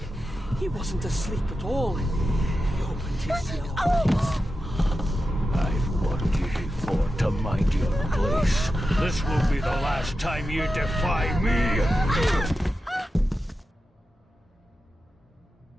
He wasn't asleep at all. He opened his yellow eyes. I've warned you before to mind your place. This will be the last time you defy me!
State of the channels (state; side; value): normal; both; correlation 0.91